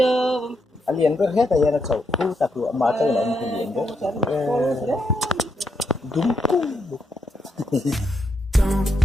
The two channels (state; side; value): normal; both; correlation 0.81